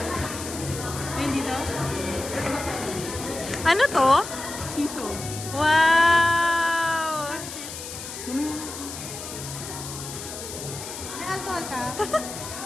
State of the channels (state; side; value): noise; left; hiss, 9 dB below the sound